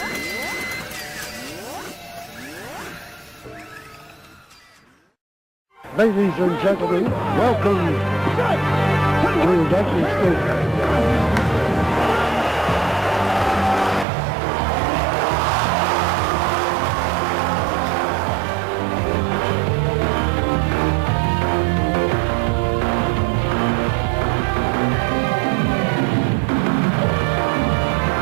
Ladies and gentlemen, welcome to Dusty State.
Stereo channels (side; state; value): left; drops out; at 14.1 s